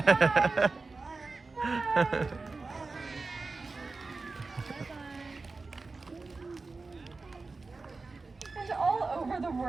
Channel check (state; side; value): quieter; left; 3.8 dB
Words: Bye. And all over the